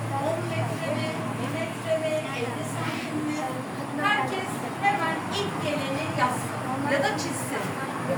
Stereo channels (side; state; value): both; identical; correlation 1.00